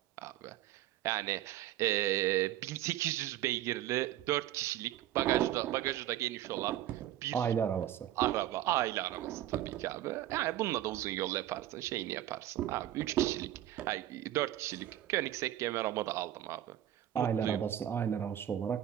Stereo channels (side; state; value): left; quieter; 12.8 dB